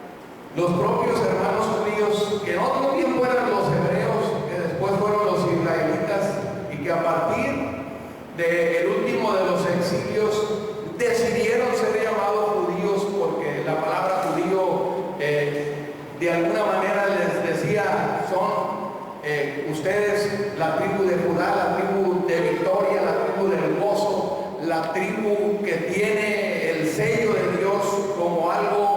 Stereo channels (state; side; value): identical; both; correlation 1.00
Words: los propios hermanos judíos, que en otro tiempo eran los hebreos, que después fueron los israelitas, y que a partir del último de los exilios decidieron ser llamados judíos, porque la palabra judío de alguna manera les decía, son ustedes la tribu de Judá, la tribu de victoria, la tribu del gozo, la tribu que tiene el sello de Dios como